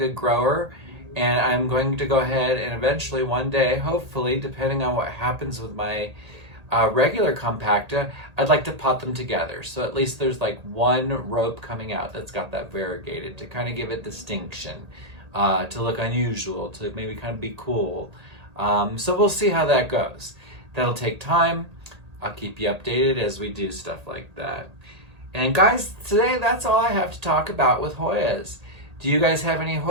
grower, and I'm going to go ahead and eventually one day, hopefully, depending on what happens with my regular compacta, I'd like to pot them together. So at least there's like one rope coming out that's got that variegated to kind of give it distinction. To look unusual, to maybe kind of be cool. So we'll see how that goes. That'll take time. I'll keep you updated as we do stuff like that. And guys, today that's all I have to talk about with Hoyas. Do you guys have any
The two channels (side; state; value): left; late; 1.8 ms